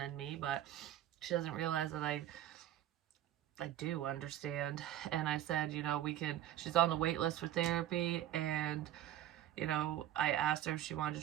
me, but she doesn't realize that I do understand. And I said, you know, she's on the wait list for therapy, and you know, I asked her if she wanted to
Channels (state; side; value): quieter; left; 12.4 dB